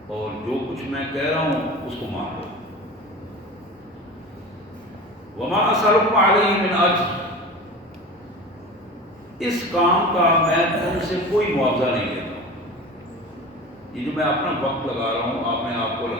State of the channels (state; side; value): normal; both; correlation 0.34